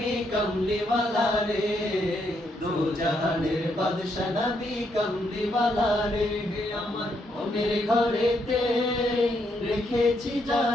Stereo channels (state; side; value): normal; both; correlation 0.76